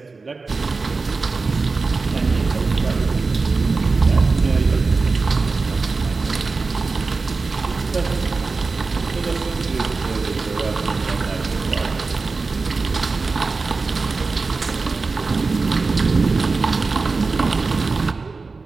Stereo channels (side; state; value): left; quieter; 4.1 dB